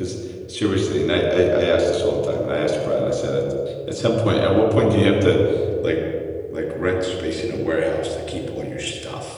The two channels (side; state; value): both; identical; correlation 1.00